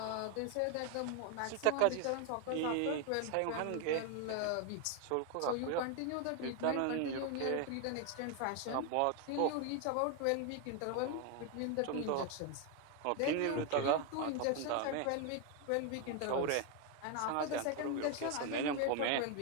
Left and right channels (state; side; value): different; both; correlation 0.01